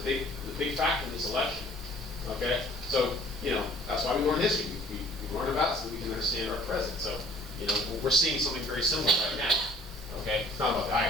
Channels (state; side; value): normal; both; correlation 0.53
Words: big factor in this election. Okay, so that's why we learn history. We learn about it so we can understand our present. So we're seeing something very similar right now. Okay, it's not about the